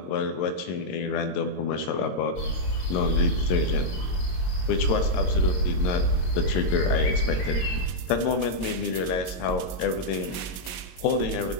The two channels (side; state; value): right; late; 22 ms